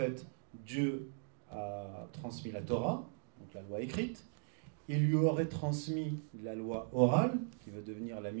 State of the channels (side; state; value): left; silent; digital silence